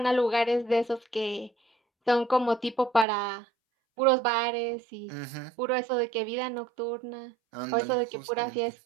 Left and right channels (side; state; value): left; drops out; at 3.1 s